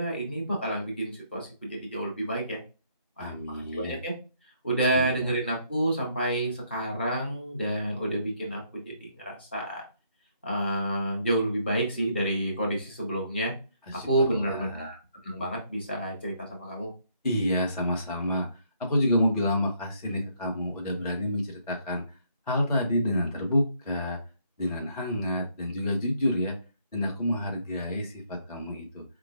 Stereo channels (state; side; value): inverted; both; correlation -0.70